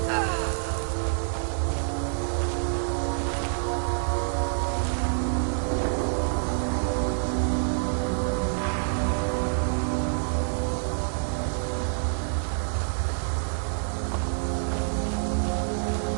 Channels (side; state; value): left; silent; digital silence